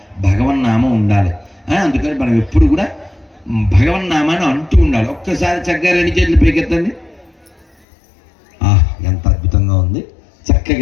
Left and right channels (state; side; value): drops out; right; at 7.7 s